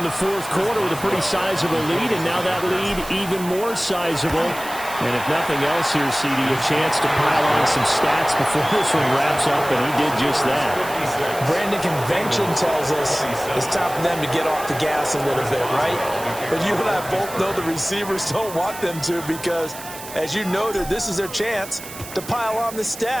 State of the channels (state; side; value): noise; right; hiss, 13 dB below the sound